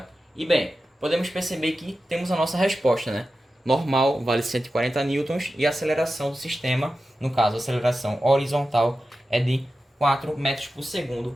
E bem, podemos perceber que temos a nossa resposta, né? Normal vale 140 newtons e a aceleração do sistema, no caso a aceleração horizontal, é de 4 metros por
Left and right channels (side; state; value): both; normal; correlation 0.92